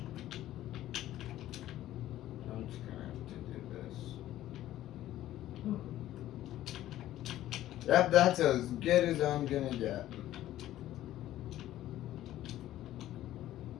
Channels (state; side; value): quieter; right; 13.7 dB